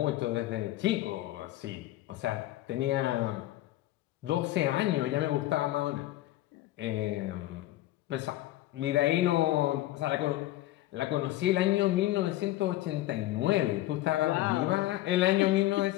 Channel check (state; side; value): quieter; right; 15.7 dB